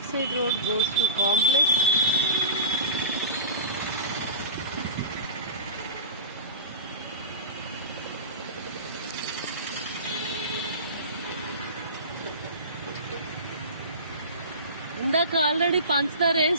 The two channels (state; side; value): inverted; both; correlation -0.32